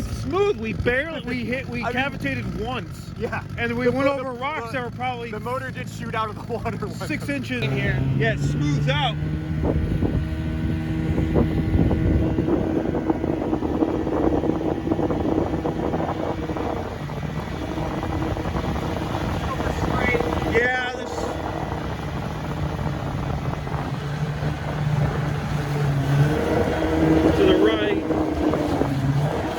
smooth. We cavitated once. Yeah. And we went over rocks that were probably... The motor did shoot out of the water. 6 inches in here. Yeah, it smooths out. Yeah, to the right.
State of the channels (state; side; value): identical; both; correlation 1.00